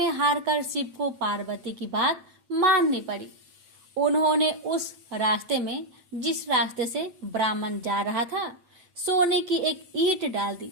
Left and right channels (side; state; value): left; late; 8.9 ms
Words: हारकर शिव को पार्वती की बात माननी पड़ी। उन्होंने उस रास्ते में, जिस रास्ते से ब्राह्मण जा रहा था, सोने की एक ईंट डाल दी